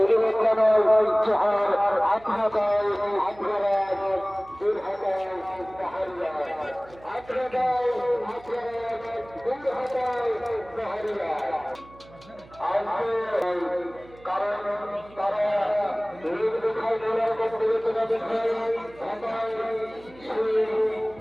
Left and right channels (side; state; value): right; noise; hum, 22 dB below the sound